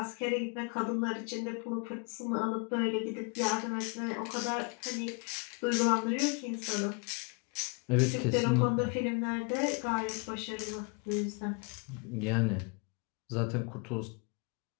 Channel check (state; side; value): quieter; right; 34.4 dB